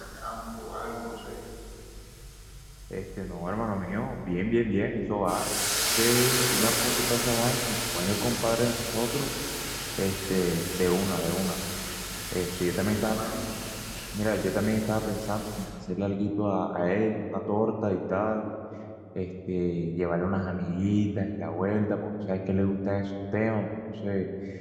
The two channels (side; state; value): both; identical; correlation 1.00